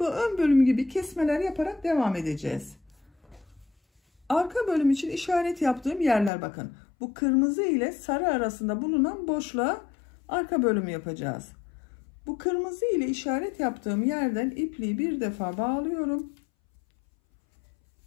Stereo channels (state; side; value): drops out; right; at 6.3 s